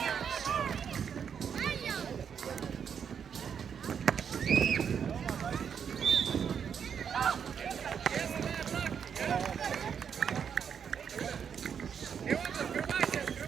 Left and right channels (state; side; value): quieter; left; 7.4 dB